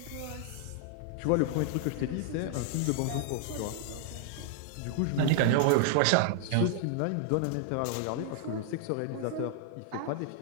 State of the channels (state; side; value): different; both; correlation 0.00